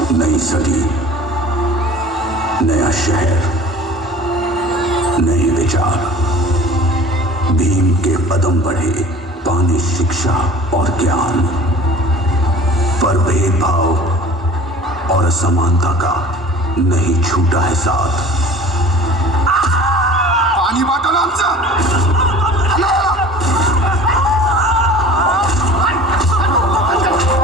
नई सदी, नया शहर, नए विचार, भीम के कदम बढ़े, पाने शिक्षा और ज्ञान, पर भेदभाव और असमानता का नहीं छूटा है साथ. पाणी बाटल आमचं.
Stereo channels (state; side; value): normal; both; correlation 0.44